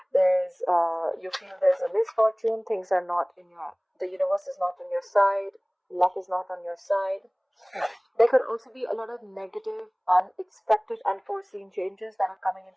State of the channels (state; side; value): identical; both; correlation 1.00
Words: You feel there's a misfortune. Things are not in the universe is not on your side. Luck is not on your side. There could also be a lot of negative, unexpected, unforeseen changes that are coming